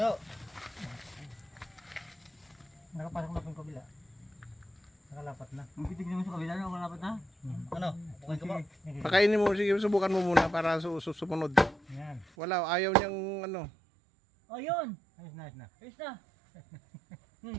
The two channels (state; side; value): drops out; left; at 12.3 s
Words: Nakapasok na po yung kabila. Nakalapat na. Magtitignan mo sa kabila na ako dapat na. Ano? Okay ka ba? Sige. Pakainin mo, sige, subukan mo muna para sumunod. Yan. Wala, ayaw niyang ano. Oh, yun. Ayos na, ayos na. Ayos na.